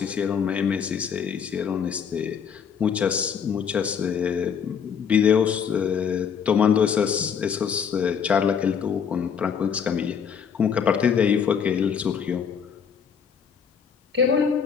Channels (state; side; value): quieter; right; 7.2 dB